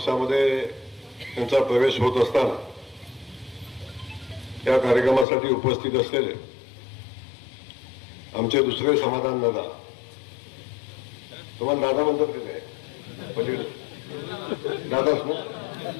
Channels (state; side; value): drops out; right; at 5.2 s